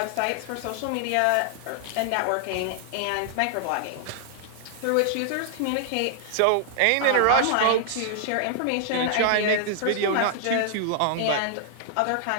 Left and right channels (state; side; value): different; both; correlation -0.01